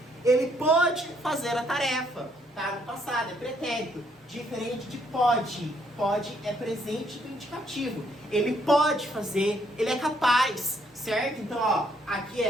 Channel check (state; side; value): normal; both; correlation 0.70